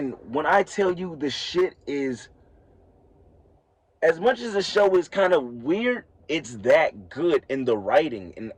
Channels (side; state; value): both; identical; correlation 1.00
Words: when I tell you the shit is, as much as the show is kind of weird, it's that good in the writing and